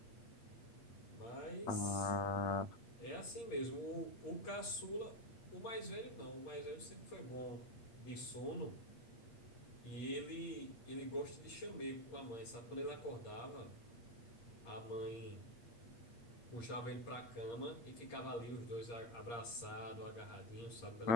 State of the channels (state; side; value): late; right; 8.6 ms